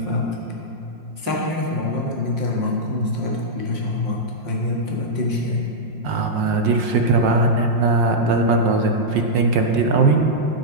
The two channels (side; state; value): left; late; 5.6 ms